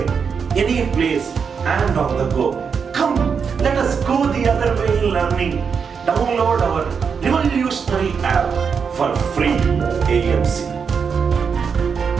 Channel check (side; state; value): left; quieter; 6.2 dB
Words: any place, and on the go. Come, let us go the other way in learning. Download our revolutionary app for free AMC.